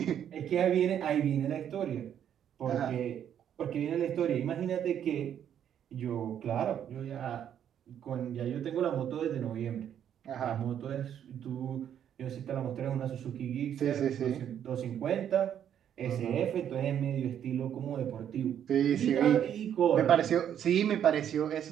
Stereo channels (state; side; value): quieter; left; 9.5 dB